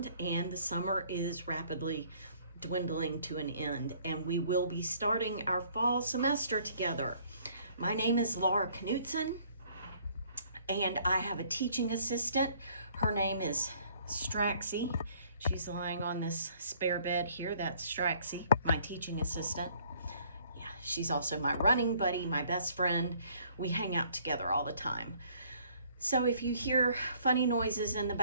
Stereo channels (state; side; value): inverted; both; correlation -0.60